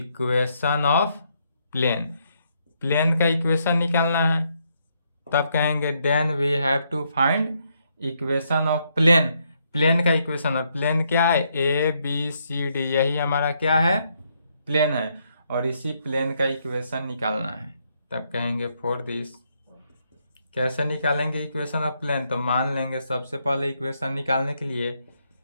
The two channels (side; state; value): both; inverted; correlation -0.76